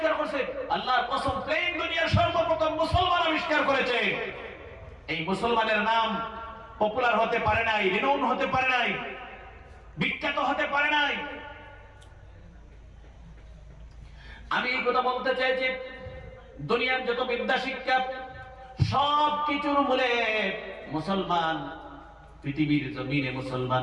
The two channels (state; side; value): identical; both; correlation 1.00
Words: করছে। আল্লাহর কসম প্লেন দুনিয়ার সর্বপ্রথম মুসলমান আবিষ্কার করেছে। এই মুসলমানের নাম পপুলার হতে পারে নাই, রিনাউন্ড হতে পারে নাই, বিখ্যাত হতে পারে নাই। আমি এই কথা বলতে চাই যে দুনিয়ার যত বিদ্যা শিক্ষা সব কিছুর মূলে মুসলমান। পৃথিবীর জমিনে